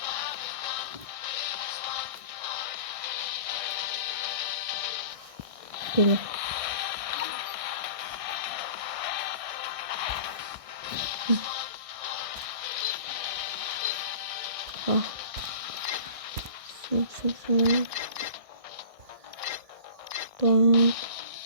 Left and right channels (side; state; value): left; late; 1.6 ms